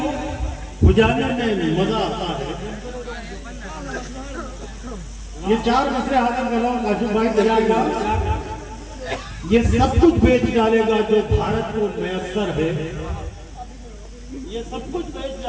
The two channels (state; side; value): identical; both; correlation 1.00